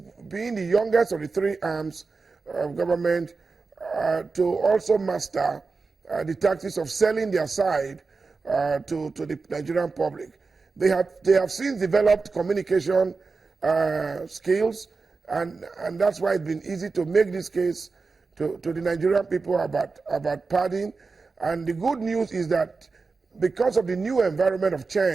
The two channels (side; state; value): left; quieter; 4.3 dB